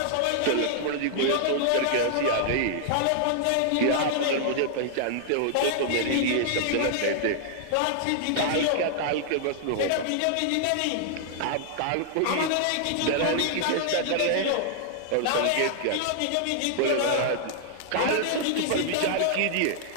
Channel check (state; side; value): different; both; correlation -0.01